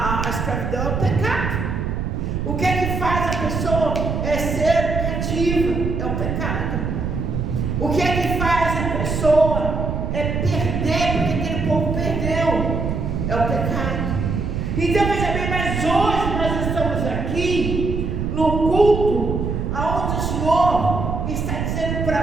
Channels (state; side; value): noise; right; rumble, 2 dB below the sound